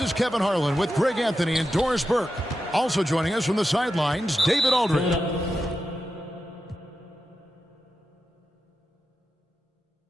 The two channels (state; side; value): normal; both; correlation 0.89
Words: is Kevin Harlan with Greg Anthony and Doris Burke. Also joining us from the sidelines, David Aldridge.